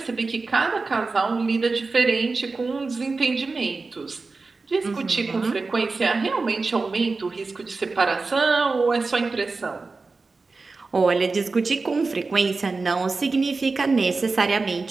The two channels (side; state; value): left; quieter; 3.9 dB